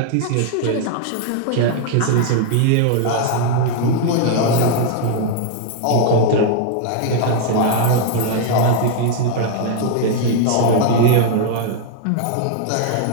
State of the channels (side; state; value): both; different; correlation 0.00